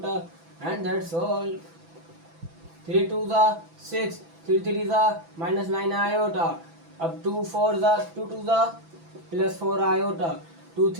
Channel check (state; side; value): late; left; 6.0 ms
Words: and that's all. 3 2 = 6, 3 3 = -9 iota. अब 2 4 = 2 2 + 4 आयोटा, 2